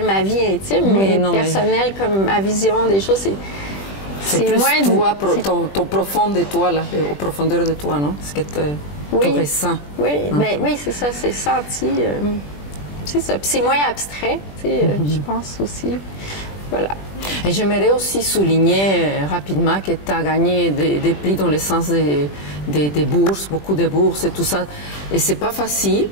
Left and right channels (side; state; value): right; late; 20 ms